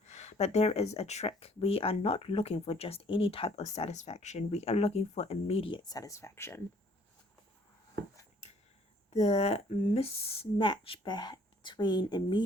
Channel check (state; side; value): normal; both; correlation 0.59